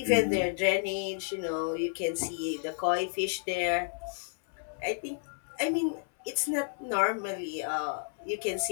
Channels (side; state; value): right; silent; 57 dB below the other